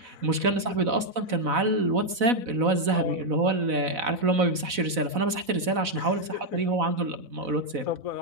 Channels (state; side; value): late; left; 4.0 ms